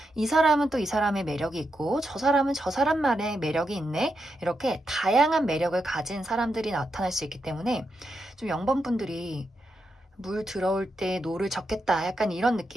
이 사람은 또 이 사람의 매력이 있고 저 사람은 저 사람만의 매력이 있네. 이렇게 다양한 매력을 가진 사람들이 나타날 수 있기 때문에 좀 0번분들이 물 들어올 때 노를 젓겠다 약간 이런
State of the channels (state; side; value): normal; both; correlation 0.84